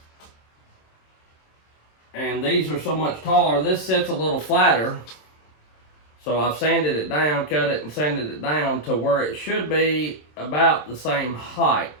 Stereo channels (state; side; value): late; right; 27 ms